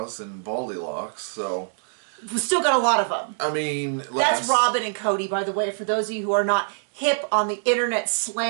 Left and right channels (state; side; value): silent; left; digital silence